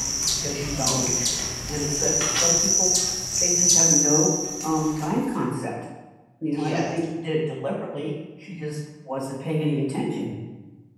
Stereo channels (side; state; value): both; identical; correlation 1.00